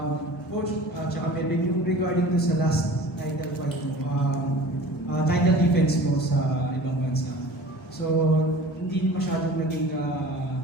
Coach, tsaka Melvin, yung regarding to sa last title fight mo, title defense mo sa ibang bansa. So, hindi masyadong naging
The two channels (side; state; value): both; normal; correlation 0.42